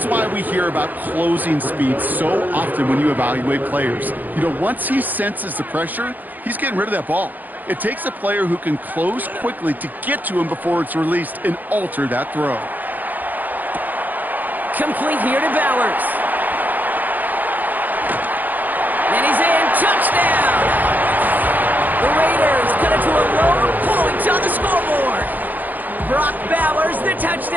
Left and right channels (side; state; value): left; late; 0.084 ms